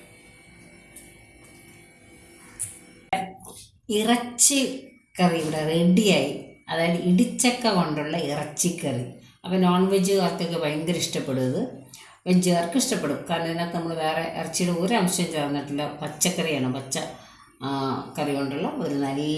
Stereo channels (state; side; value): identical; both; correlation 1.00